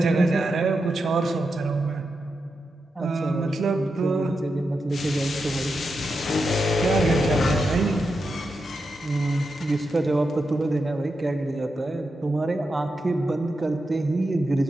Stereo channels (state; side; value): normal; both; correlation 0.87